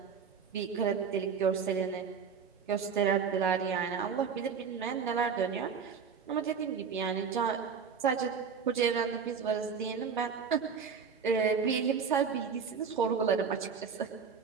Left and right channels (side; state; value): left; quieter; 6.3 dB